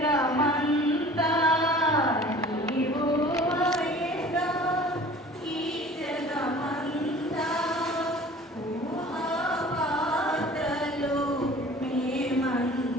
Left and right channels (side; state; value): both; normal; correlation 0.45